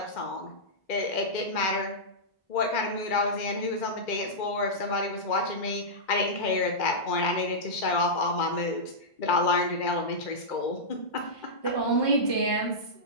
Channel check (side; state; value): right; late; 2.1 ms